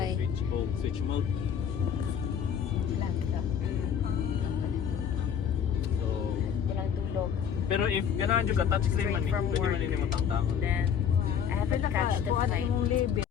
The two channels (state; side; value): quieter; right; 7.9 dB